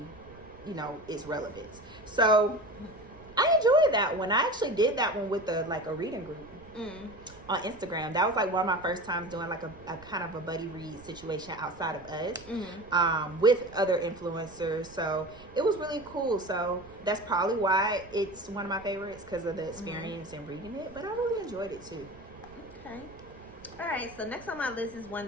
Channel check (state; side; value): noise; right; rumble, 21 dB below the sound